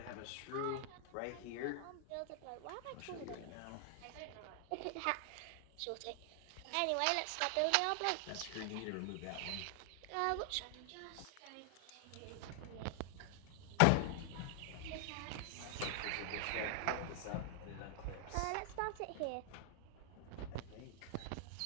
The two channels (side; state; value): both; different; correlation 0.00